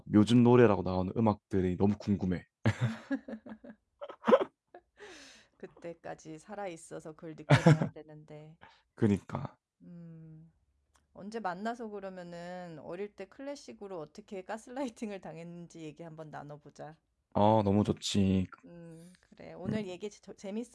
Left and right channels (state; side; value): identical; both; correlation 1.00